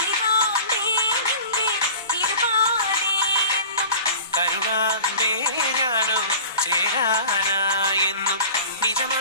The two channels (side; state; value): both; inverted; correlation -0.39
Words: നിന്റെ തിരുപാതയെന്നും കരുണാമ്പേ ഞാനോ ചേരാനായെന്നും